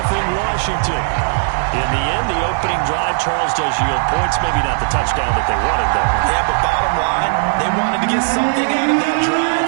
Washington. In the end, the opening drive, Charles, does yield points. Maybe not the touchdown that they wanted, though. Yeah, but bottom line, they wanted to get something out of that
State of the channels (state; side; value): silent; left; digital silence